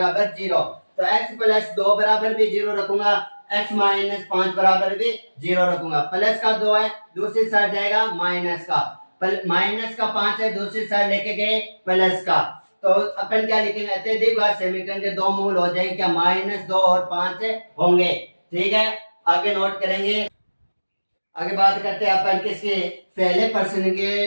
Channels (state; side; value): inverted; both; correlation -1.00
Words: 0। तो x प्लस 2 बराबर भी 0 रखूंगा, x -5 बराबर भी 0 रखूंगा। प्लस का 2 है, दूसरी साइड जाएगा माइनस का, माइनस का 5 है, दूसरी साइड लेके गए प्लस का। तो अपन क्या लिखेंगे, अत्यधिक घात समीकरण के दो मूल हो जाएंगे क्या, -2 और 5 होंगे। ठीक है, आगे नोट करेंगे। आगे बात करते हैं अपन किसके, पहले प्रश्न के